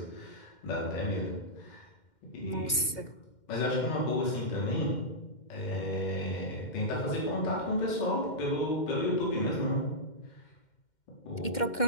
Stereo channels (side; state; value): right; late; 2.1 ms